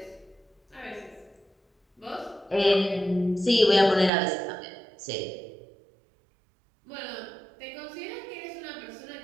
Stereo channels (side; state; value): left; drops out; at 4.1 s